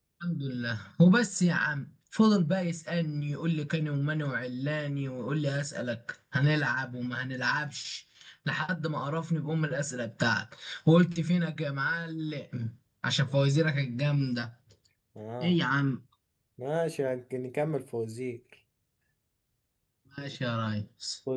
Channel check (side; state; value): both; identical; correlation 1.00